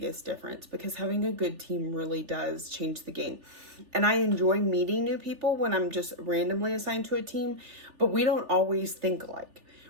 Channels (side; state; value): left; late; 3.4 ms